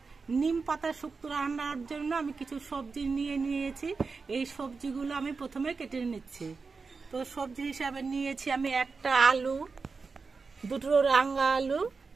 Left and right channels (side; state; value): left; quieter; 4.6 dB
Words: নিম পাতা শুক্তো রান্নার জন্য আমি কিছু সবজি নিয়েছি। এই সবজিগুলো আমি প্রথমে কেটে নিচ্ছি। তো সবজি হিসাবে নিয়েছি আমি একটা আলু, দুটো রাঙা আলু,